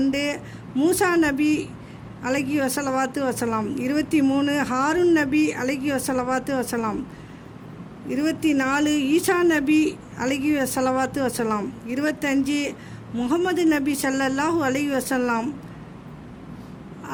மூசா நபி அலைஹி வஸலாத்து வஸலாம். 23. ஹாரூன் நபி அலைஹி வஸலாத்து வஸலாம். 24. ஈசா நபி அலைஹி வஸலாத்து வஸலாம். 25. முஹம்மது நபி ஸல்லல்லாஹு அலைஹி வஸல்லம்.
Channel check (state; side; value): identical; both; correlation 1.00